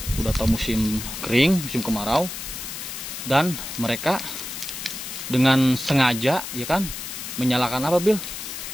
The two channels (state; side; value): noise; left; hiss, 8 dB below the sound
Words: Udah tahu musim kering, musim kemarau, dan mereka dengan sengaja ya kan menyalakan apa Bil